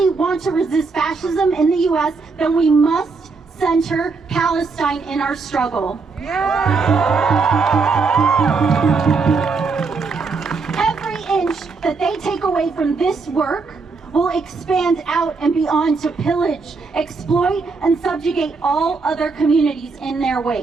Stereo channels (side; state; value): left; quieter; 4.4 dB